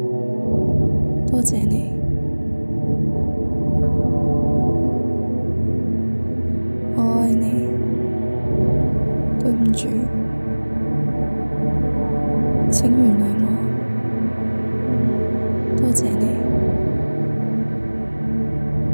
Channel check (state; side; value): inverted; both; correlation -1.00